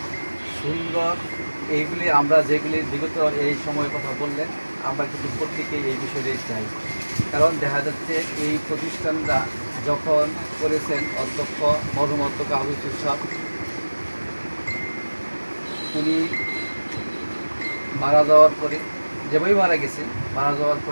সুন্দর। এইগুলি আমরা যেগুলি বিগত এই সময়ের কথা বললেন, আমরা কিন্তু প্রত্যেকেই এই বিষয়টাই চাই। কারণ দেখা যাচ্ছে এই প্রতিষ্ঠানরা যখন করেছেন অধ্যক্ষ মরহুম অধ্যক্ষ আবু ইউসুফ সাহেব, উনি মারা যাওয়ার পরে, যেভাবে মারা গেছেন, মারা যাওয়ার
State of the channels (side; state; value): both; inverted; correlation -1.00